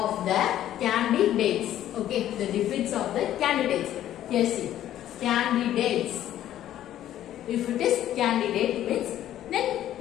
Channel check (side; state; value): right; quieter; 12.2 dB